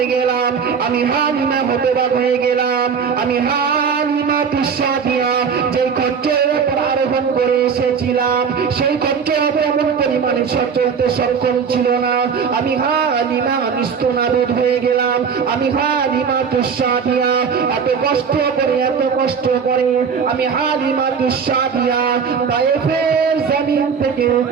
গেলাম, আমি হালিমাতুস সাদিয়া যে খচ্চরের উপর আরোহণ করে এসেছিলাম সেই খচ্চর তেমন পরিমাণে চলতে সক্ষম ছিল না। আমি হালিমা নিস্তনাবুদ হয়ে গেলাম। আমি হালিমাতুস সাদিয়া এত কষ্ট করে আমি হালিমাতুস সাদিয়া তায়েফের জমিন থেকে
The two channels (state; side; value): quieter; left; 6.4 dB